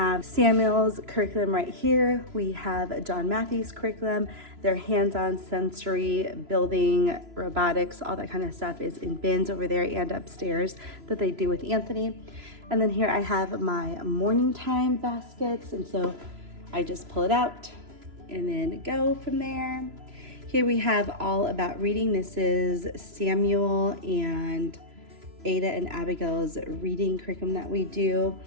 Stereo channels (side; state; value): left; late; 3.0 ms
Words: Samuel's curriculum right here. We have John Matthew's curriculum. Their hands-on sensory building, robotics, all that kind of stuff is in bins over there and upstairs that they do with Anthony. And then here I have my morning time baskets. And so I just pull it out and then go from there. Here we have all about reading. This is Samuel and Ada and Abigail's reading curriculum that we do.